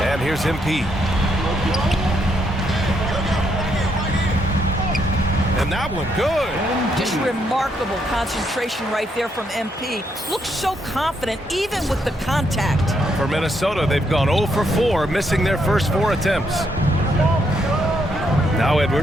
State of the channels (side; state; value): both; normal; correlation 0.76